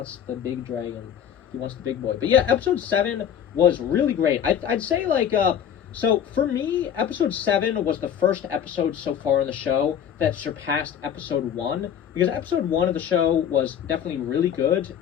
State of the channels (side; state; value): right; quieter; 9.0 dB